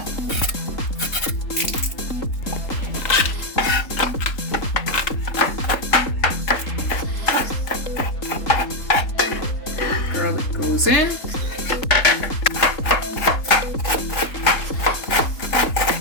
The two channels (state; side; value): late; right; 3.8 ms